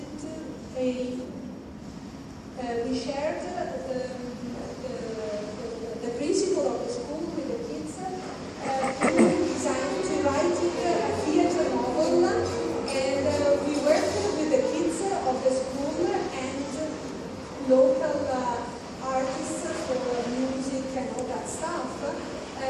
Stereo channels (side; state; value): both; identical; correlation 1.00